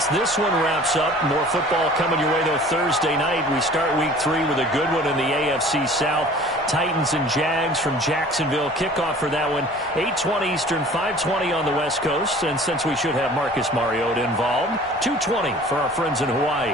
this one wraps up. More football coming your way, though, Thursday night. We start week 3 with a good one in the AFC South. Titans and Jags from Jacksonville. Kickoff for that one, 8:20 Eastern, 5:20 on the West Coast. And since we should have Marcus Mariota involved, 2:20 for our friends in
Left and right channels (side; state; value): both; normal; correlation 0.47